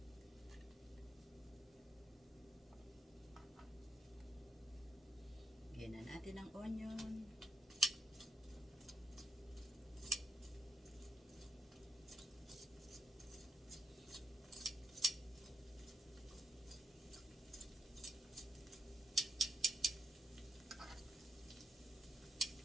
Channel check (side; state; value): both; normal; correlation 0.81